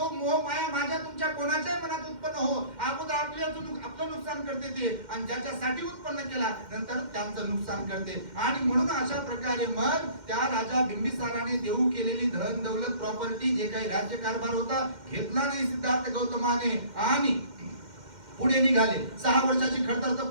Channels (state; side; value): late; left; 2.1 ms